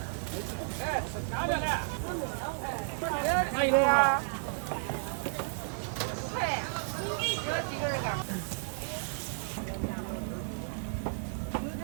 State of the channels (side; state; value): left; silent; digital silence